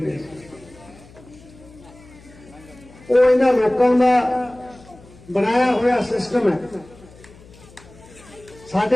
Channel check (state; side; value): noise; left; hum, 23 dB below the sound